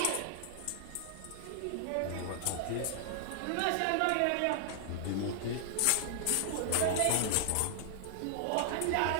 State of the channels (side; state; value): both; different; correlation -0.01